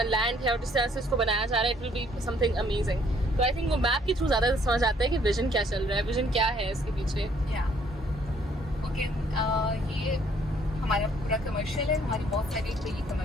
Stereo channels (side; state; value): both; normal; correlation 0.63